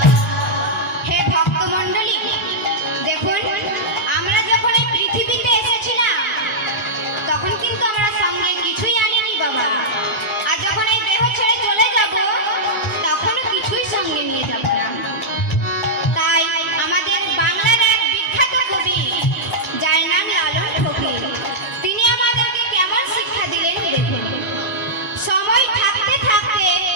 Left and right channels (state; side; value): normal; both; correlation -0.09